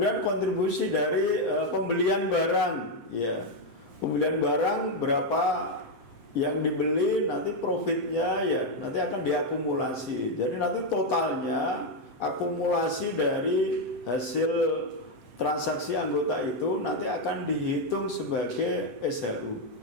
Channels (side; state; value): left; late; 7.8 ms